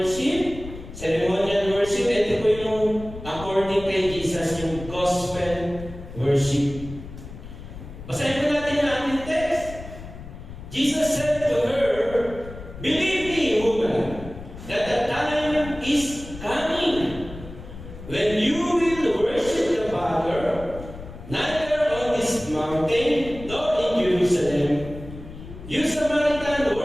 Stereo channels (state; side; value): noise; left; rumble, 13 dB below the sound